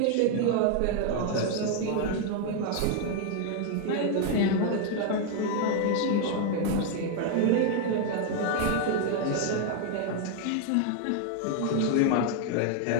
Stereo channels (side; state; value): both; different; correlation 0.00